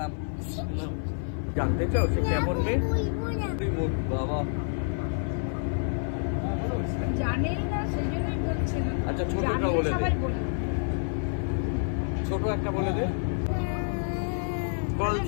জানতে চাও সে কেমন মেয়ে? বাবা জানেই না সেই জন্যই বলছে না। আচ্ছা ছোটটা বলে দে, ছোট একটা বলে দে।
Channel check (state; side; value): silent; right; 59 dB below the other